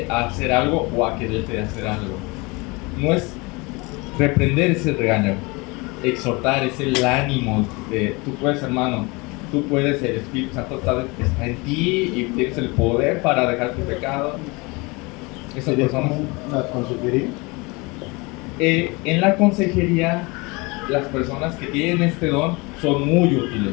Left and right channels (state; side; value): quieter; right; 26.3 dB